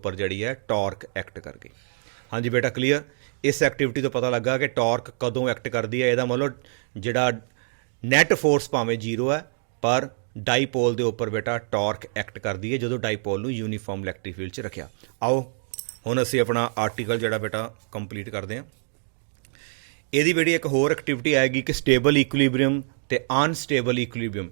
ਜਿਹੜੀ ਹੈ ਟਾਰਕ ਐਕਟ ਕਰ ਗਈ। ਹਾਂਜੀ ਬੇਟਾ ਕਲੀਅਰ। ਇਸ ਐਕਟੀਵਿਟੀ ਤੋਂ ਪਤਾ ਲੱਗਾ ਕਿ ਟਾਰਕ ਕਦੋਂ ਐਕਟ ਕਰਦੀ ਹੈ। ਇਹਦਾ ਮਤਲਬ ਜਿਹੜਾ ਨੈਟ ਫੋਰਸ ਭਾਵੇਂ ਜ਼ੀਰੋ ਹੈ ਪਰ ਡਾਈਪੋਲ ਦੇ ਉੱਪਰ ਬੇਟਾ ਟਾਰਕ ਐਕਟ ਕਰਦੀ ਹੈ ਜਦੋਂ ਡਾਈਪੋਲ ਨੂੰ ਯੂਨੀਫਾਰਮ ਇਲੈਕਟ੍ਰਿਕ ਫੀਲਡ 'ਚ ਰੱਖਿਆ। ਆਓ ਹੁਣ ਅਸੀਂ ਆਪਣਾ ਆਰਟੀਕਲ ਜਿਹੜਾ ਬੇਟਾ ਕੰਪਲੀਟ ਕਰਦੇ ਹਾਂ। ਇਹਦੀ ਬੇਟੀ ਇੱਕ ਹੋਰ ਐਕਟੀਵਿਟੀ ਆਏਗੀ ਕਿ ਸਟੇਬਲ ਇਕੁਇਲੀਬ੍ਰੀਅਮ ਤੇ ਅਨਸਟੇਬਲ ਇਕੁਇਲੀਬ੍ਰੀਅਮ,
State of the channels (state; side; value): silent; left; digital silence